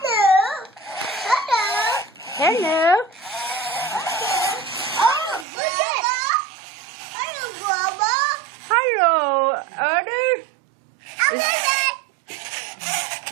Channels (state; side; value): drops out; left; at 5.5 s